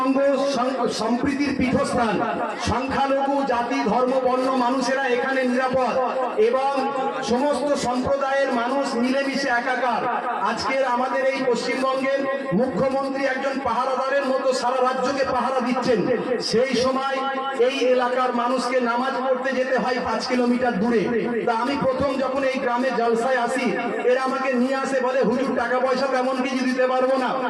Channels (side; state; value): both; identical; correlation 1.00